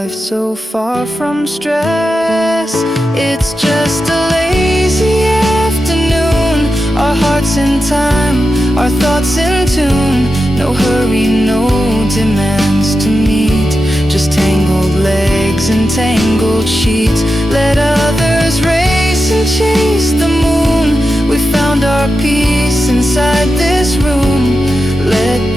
so far from stress. It's just a lazy afternoon, our hearts in time, our thoughts in tune. No hurry, no demands to meet, just tangled legs and tangled sheets. Let others race and chase the moon. We found our peace inside this room. Let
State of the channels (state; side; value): normal; both; correlation 0.90